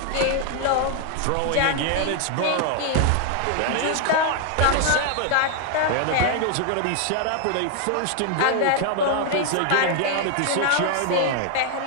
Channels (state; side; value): different; both; correlation 0.00